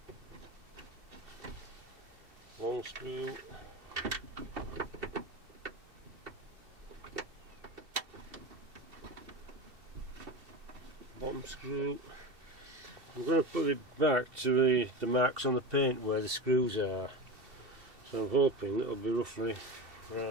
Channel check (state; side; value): late; left; 2.7 ms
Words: Long screw. Bottom screw. I'm going to put it back to the marks on the paint where the screws are. So I'm hoping that'll be roughly